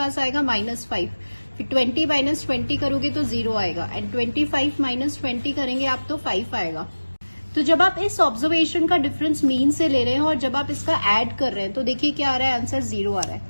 आएगा -5. फिर 20 माइनस 20 करोगे तो 0 आएगा, एंड 25 माइनस 20 करेंगे आप तो 5 आएगा. तो जब आप इस ऑब्जर्वेशन का डिफरेंस मीन से ले रहे हैं और जब आप इसका ऐड कर रहे हैं तो देखिए क्या आ रहा है, आंसर 0 आ रहा है.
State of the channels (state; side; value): inverted; both; correlation -1.00